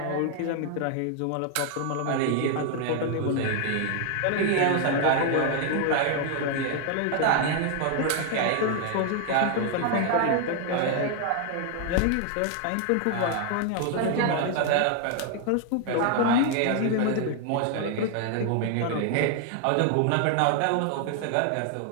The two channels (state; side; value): different; both; correlation 0.00